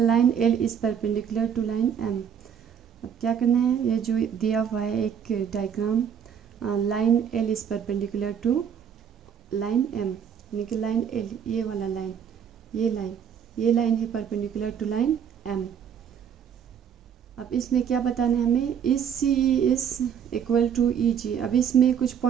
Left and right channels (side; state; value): left; quieter; 8.0 dB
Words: L is perpendicular to line M. अब क्या करना है, ये जो दिया हुआ है एक diagram, line L is perpendicular to line M, यानी कि लाइन एल, ये वाला लाइन, ये लाइन है परपेंडिकुलर टू लाइन एम। अब इसमें क्या बताना है हमें, इस C E is equal to E G. अब इसमें कुछ